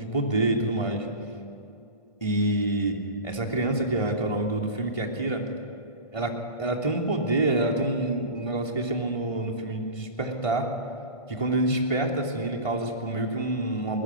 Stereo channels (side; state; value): right; late; 1.5 ms